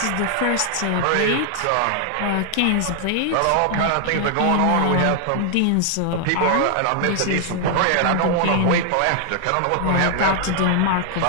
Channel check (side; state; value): both; different; correlation 0.00